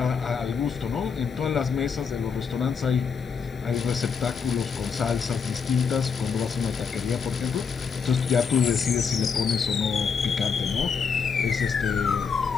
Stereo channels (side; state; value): right; quieter; 5.9 dB